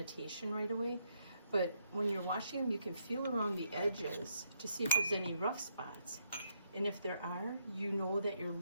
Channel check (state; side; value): inverted; both; correlation -0.76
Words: right away. But when you're washing them, you can feel around the edges to see if there's any rough spots. And if there are, you know that your